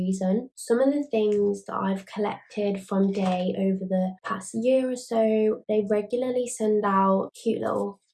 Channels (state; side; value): identical; both; correlation 1.00